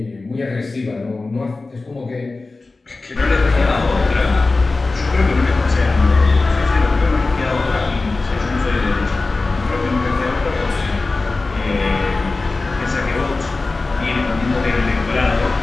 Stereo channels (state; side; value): quieter; right; 3.5 dB